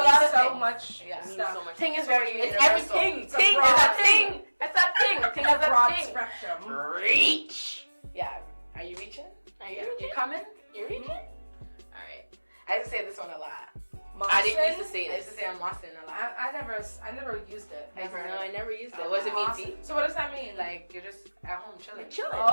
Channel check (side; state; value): both; inverted; correlation -1.00